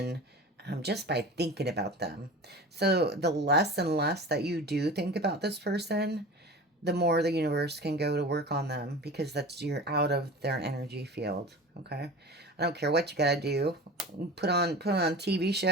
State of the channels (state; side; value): normal; both; correlation 0.35